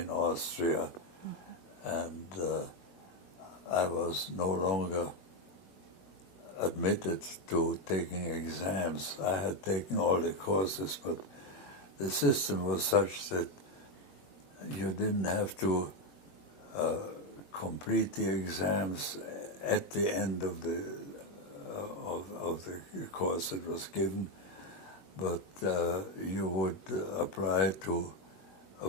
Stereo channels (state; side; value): late; right; 21 ms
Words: Austria, and I was no longer admitted to taking exams. I had taken all the courses, but the system was such that you didn't have to complete the exams at the end of the course that was given, but you would apply to